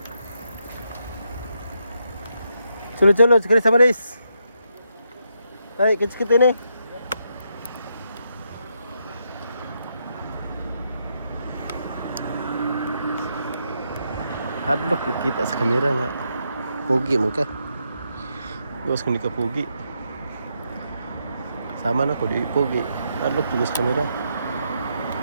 Sulod-sulod, sekali sama Riz. Ay, kits-kit ini. Hadlock kita sa kamera nga. Pogi mo ka. Bukas ko ni ka pogi. Sama na ko di pogi. Hadlock juga sa kamera.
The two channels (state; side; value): inverted; both; correlation -0.80